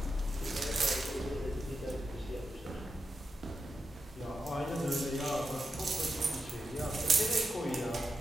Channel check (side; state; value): both; normal; correlation 0.88